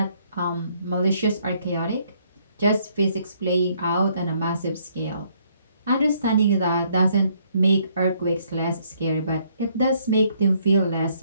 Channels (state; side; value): inverted; both; correlation -0.68